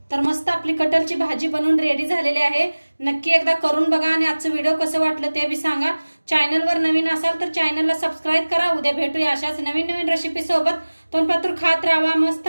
तर मस्त आपली कटरची भाजी बनवून रेडी झालेली आहे. नक्की एकदा करून बघा आणि आजचं व्हिडिओ कसं वाटलं ते बी सांगा. चॅनलवर नवीन असाल तर चॅनलला सबस्क्राईब करा. उद्या भेटूया अशाच नवीन रेसिपी सोबत. तोपर्यंत खात राहा, मस्त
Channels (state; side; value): inverted; both; correlation -1.00